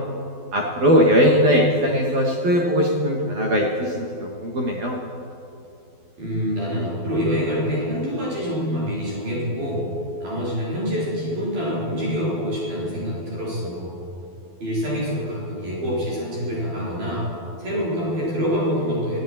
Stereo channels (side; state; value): left; late; 12 ms